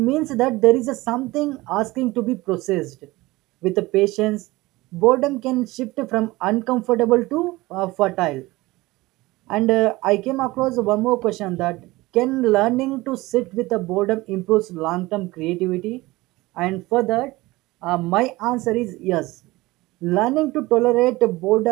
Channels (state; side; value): quieter; left; 20.2 dB